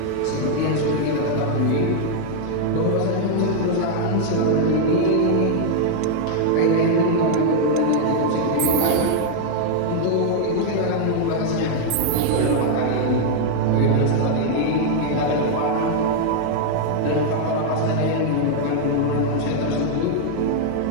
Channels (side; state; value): both; different; correlation 0.00